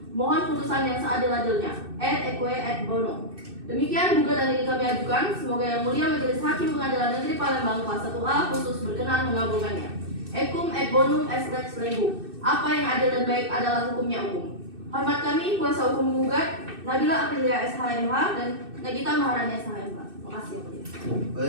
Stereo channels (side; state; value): left; late; 2.6 ms